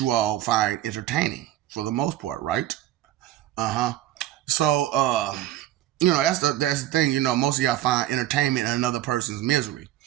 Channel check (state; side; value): quieter; left; 13.8 dB